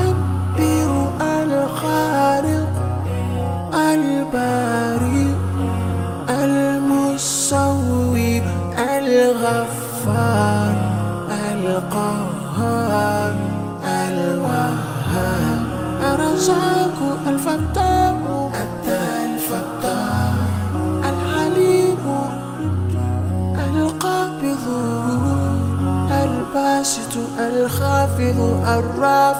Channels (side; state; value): both; identical; correlation 1.00